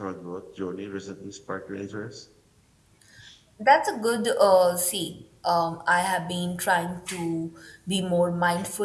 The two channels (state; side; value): identical; both; correlation 1.00